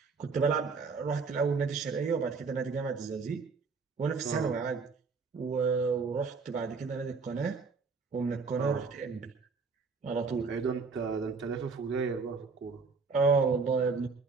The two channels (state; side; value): quieter; left; 4.7 dB